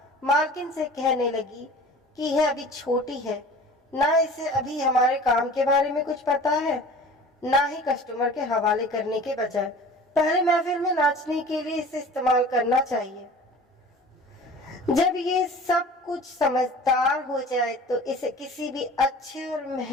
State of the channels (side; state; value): both; normal; correlation 0.42